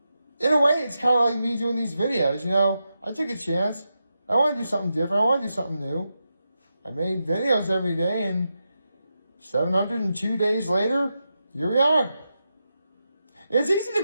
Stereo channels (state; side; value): inverted; both; correlation -0.88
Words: a way, it's kind of like me doing these videos, I took a chance. I want to do something different. I want to do something new. I made videos every day, and 702 days later, here we are. It's easy to